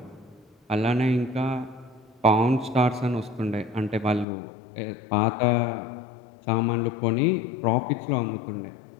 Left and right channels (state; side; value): drops out; right; at 4.2 s